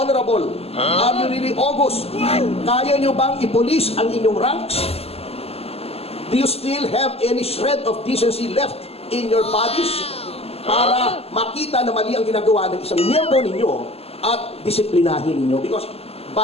Are you really august? Kaya nyo bang ipolis ang inyong ranks? Do you still have any shred of decency left in your bodies? Para makita na mali ang ginagawa ng isang miyembro ninyo at disiplinahin ninyo. Because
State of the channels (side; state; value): right; late; 0.29 ms